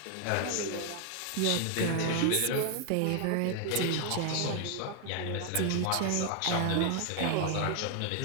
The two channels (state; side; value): different; both; correlation 0.00